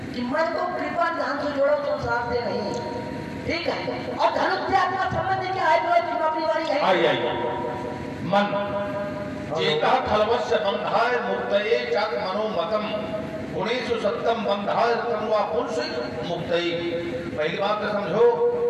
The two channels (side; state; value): both; identical; correlation 1.00